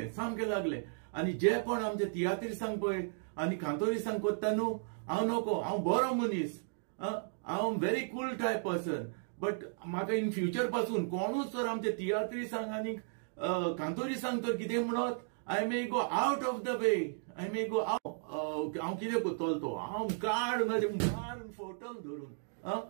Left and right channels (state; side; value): silent; left; digital silence